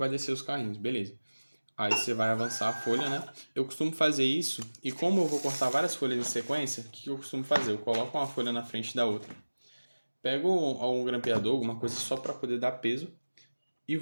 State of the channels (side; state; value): both; inverted; correlation -1.00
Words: descer os carrinhos, beleza. Aí você vai avançar a folha, né? Eu costumo fazer isso, e como eu vou cortar várias folhas em sequência, o que eu costumo fazer? Eu coloco uma folha na frente da outra, pego um grampeador, alguma coisa só para poder dar peso, e